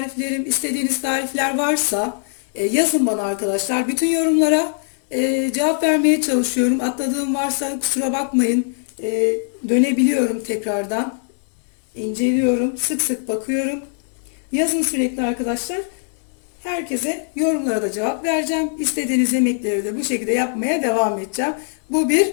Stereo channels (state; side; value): silent; right; 65 dB below the other